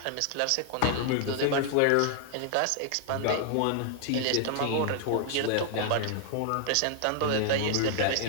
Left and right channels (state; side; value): different; both; correlation 0.00